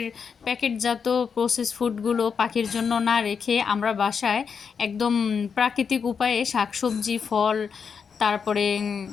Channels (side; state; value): right; quieter; 6.2 dB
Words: প্যাকেটজাত প্রসেস ফুডগুলো পাখির জন্য না রেখে আমরা বাসায় একদম প্রাকৃতিক উপায়ে শাকসবজি, ফল, তারপরে